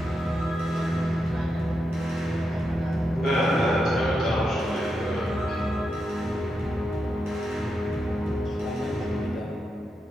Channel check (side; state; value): both; normal; correlation 0.85